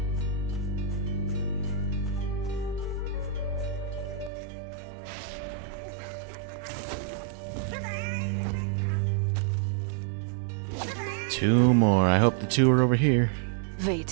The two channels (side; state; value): left; drops out; at 4.3 s